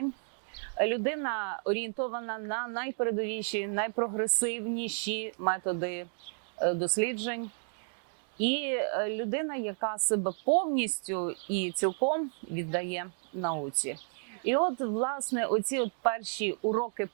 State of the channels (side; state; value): left; silent; 56 dB below the other